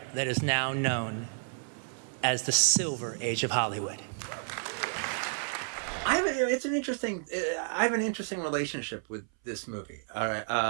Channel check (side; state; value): left; silent; 57 dB below the other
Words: that is now known as the Silver Age of Hollywood. I have an interesting relationship with this movie. All